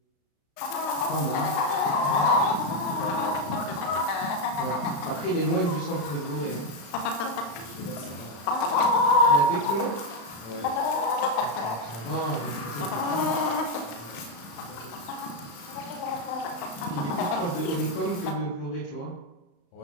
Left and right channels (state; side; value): late; right; 35 ms